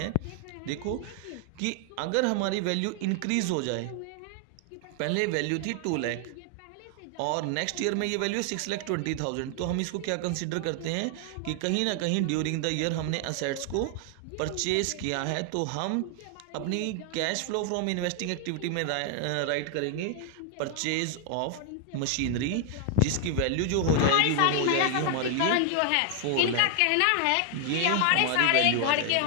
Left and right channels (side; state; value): both; different; correlation 0.00